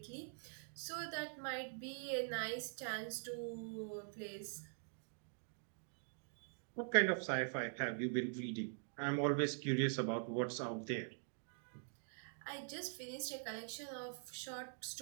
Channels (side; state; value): left; silent; digital silence